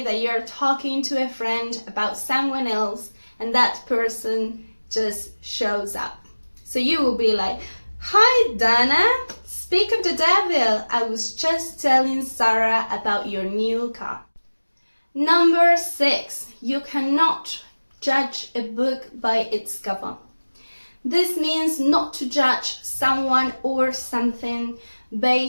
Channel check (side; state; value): both; inverted; correlation -1.00